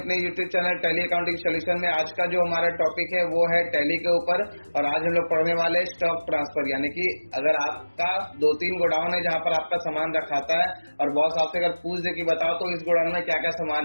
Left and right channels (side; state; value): both; inverted; correlation -1.00